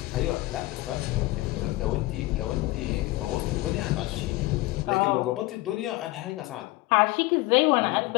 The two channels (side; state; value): right; quieter; 19.7 dB